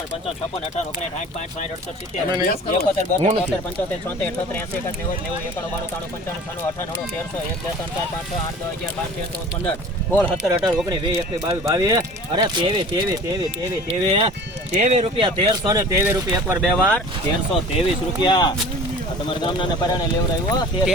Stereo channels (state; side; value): normal; both; correlation 0.43